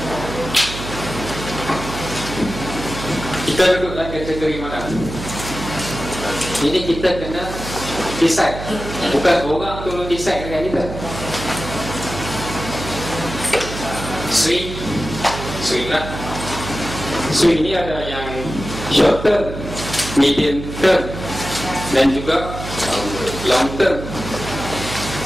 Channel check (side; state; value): right; noise; hum, 9 dB below the sound